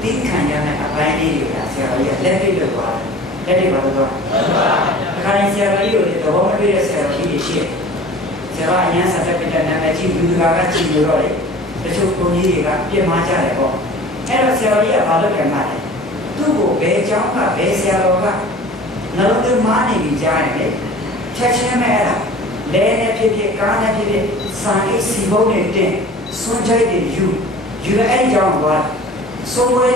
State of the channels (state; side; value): normal; both; correlation 0.43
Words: တိခံရ နဲ့အပိုင်းလေးတွေကဆရာကြီးကလက်တွေ့လုပ်သွားတယ်လက်တွေ့ပါတော့အခါတိုင်းဆရာကြီးကိုသဘောမတွေ့တဲ့ဆရာကြီးတွေရှိတယ်ဆရာအရန်ဆက်ပြတဲ့နာမည်ကြီးလူကကြည့်လို့တော့တချို့ကိုကြီးတွေကပြင်မာကြတယ်ပေါ့အဲ့တော့ဆရာကြီးကဘာလုပ်ကြမှာလဲသူ့ကိုဘယ်ကျောင်းကဘယ်ဆရာတော်ကနှလုံးသွင်းမာနေပြီကြားရင်လေချက်ချင်းပဲအဲ့ဒါလဲနဲ့ဖြစ်ဖြစ်ကားနဲ့ဖြစ်ဖြစ်စာရေးစီပုံးနဲ့တင်စွန့်ချိုက်တွေယူအဲ့ကြောင်းကစိုးဝဲ